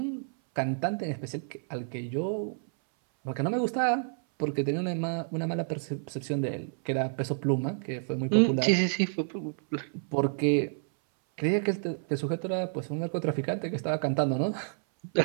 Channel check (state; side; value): silent; left; 58 dB below the other